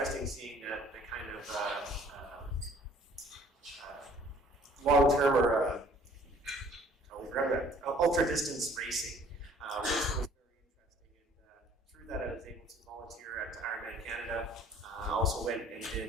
seeing the kind of long-term or ultra-distance racing, which was very interesting. And through that, I was able to volunteer at Ironman Canada. I also went and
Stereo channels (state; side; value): normal; both; correlation 0.55